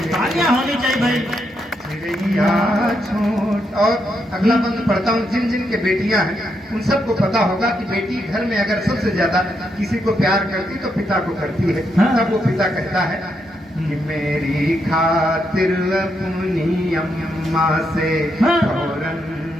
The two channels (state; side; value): normal; both; correlation 0.80